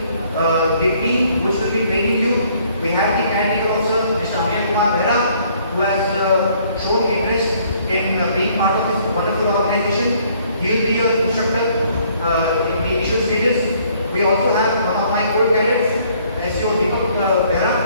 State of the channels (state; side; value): inverted; both; correlation -0.63